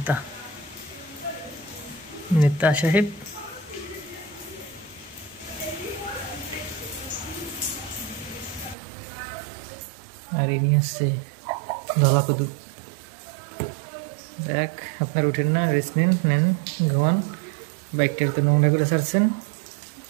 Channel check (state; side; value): drops out; left; at 8.8 s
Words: নেতা সাহেব। আর ইনি হচ্ছে ধলাকুদু। দেখ, আপনার উঠেন না, রেস্ট নেন, নেন ঘুমান, বাইকটার তো নোংরা করে ছাড়ছেন।